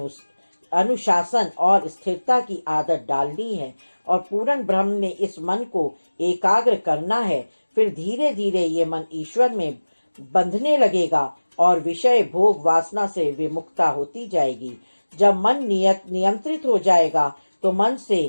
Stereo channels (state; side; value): inverted; both; correlation -1.00